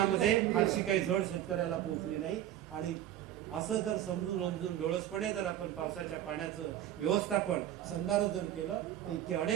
फारशी काही झड शेतकऱ्याला पोहोचली नाही। आणि असं जर समजून डोळसपणे जर आपण पावसाच्या पाण्याचं व्यवस्थापन संधारण केलं तर इतके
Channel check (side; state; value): left; quieter; 11.9 dB